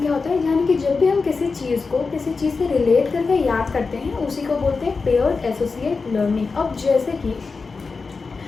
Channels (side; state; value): right; quieter; 4.4 dB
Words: क्या होता है, यानी कि जब भी हम किसी चीज़ को किसी चीज़ से रिलेट करके याद करते हैं, उसी को बोलते हैं पेयर्ड एसोसिएट लर्निंग। अब